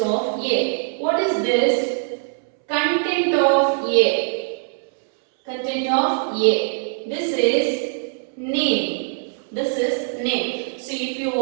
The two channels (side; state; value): left; silent; 64 dB below the other